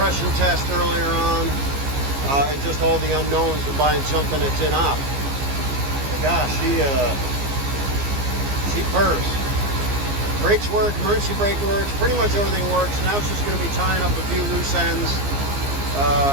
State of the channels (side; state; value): left; late; 15 ms